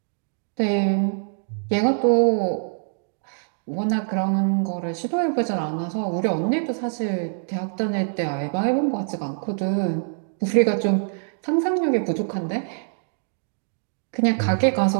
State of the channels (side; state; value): left; silent; digital silence